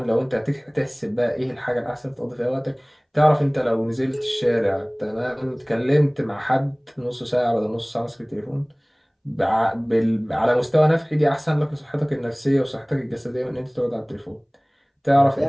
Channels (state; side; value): identical; both; correlation 1.00